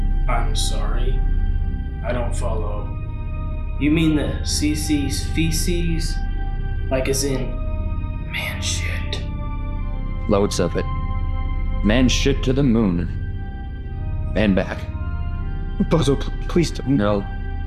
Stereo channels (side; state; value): both; identical; correlation 1.00